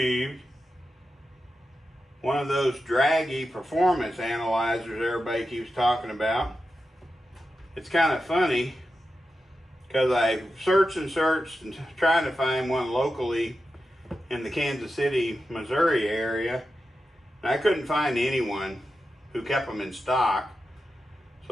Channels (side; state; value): both; normal; correlation 0.90